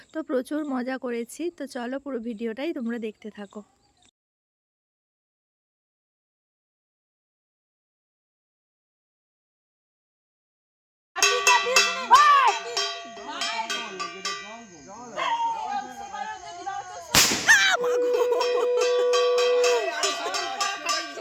তো প্রচুর মজা করেছি। তো চলো পুরো ভিডিওটাই তোমরা দেখতে থাকো।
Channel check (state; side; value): identical; both; correlation 1.00